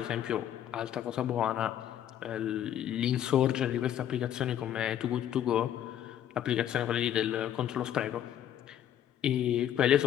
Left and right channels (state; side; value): quieter; right; 10.7 dB